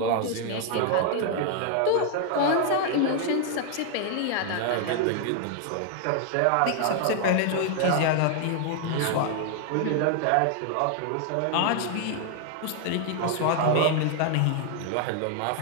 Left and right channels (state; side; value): different; both; correlation 0.00